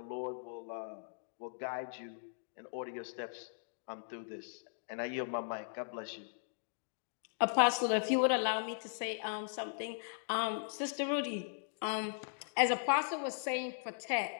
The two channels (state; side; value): silent; right; digital silence